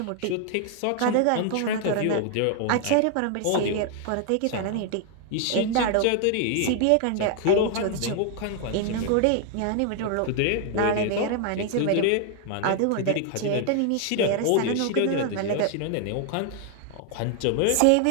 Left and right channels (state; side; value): different; both; correlation 0.00